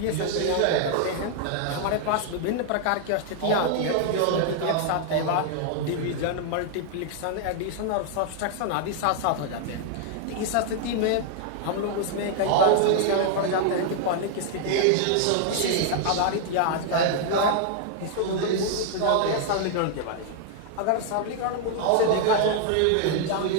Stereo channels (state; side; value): different; both; correlation 0.00